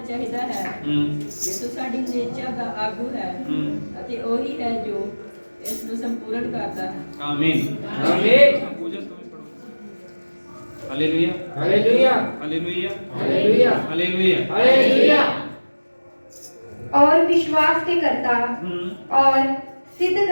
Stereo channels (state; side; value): inverted; both; correlation -1.00